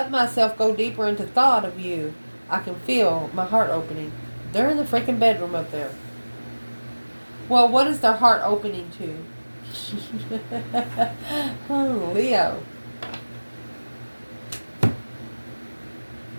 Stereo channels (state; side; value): inverted; both; correlation -1.00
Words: myself go deeper into thought of you, I can feel my heart opening. They're in the freaking bedroom up there. Well, what is their heart opening to? Oh, Leo.